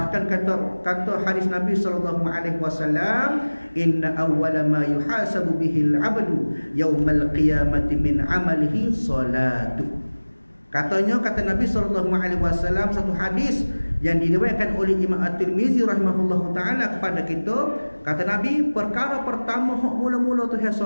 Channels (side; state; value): both; inverted; correlation -1.00